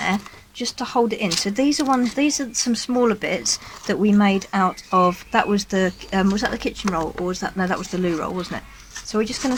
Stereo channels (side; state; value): both; identical; correlation 1.00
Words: just to hold it in. So these are some smaller bits that we made out of, that was the was that the kitchen roll, or was that, no, that was the loo roll, wasn't it? So we're just going